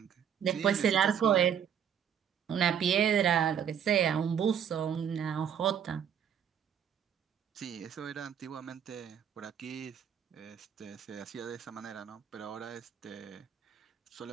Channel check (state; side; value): quieter; left; 8.5 dB